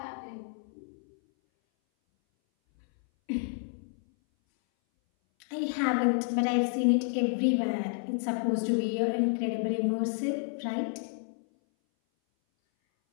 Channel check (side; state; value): right; silent; 58 dB below the other